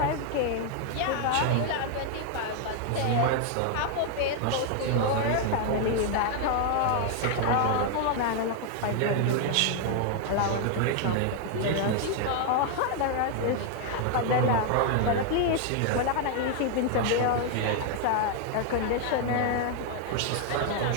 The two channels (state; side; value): different; both; correlation 0.00